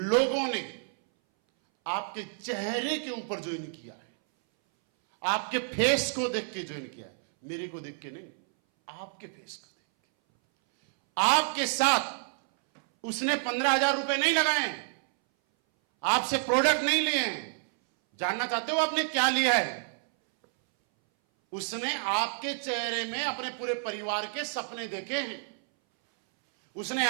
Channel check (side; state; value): left; silent; 58 dB below the other